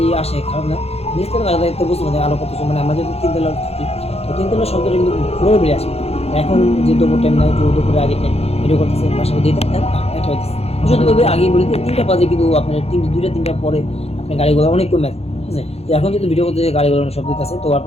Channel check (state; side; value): late; right; 0.30 ms